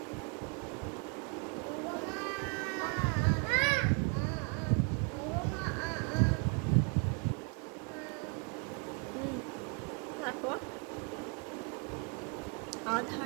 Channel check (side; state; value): left; quieter; 35.0 dB